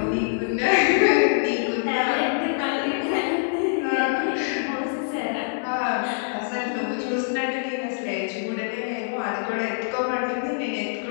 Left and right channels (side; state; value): right; silent; 62 dB below the other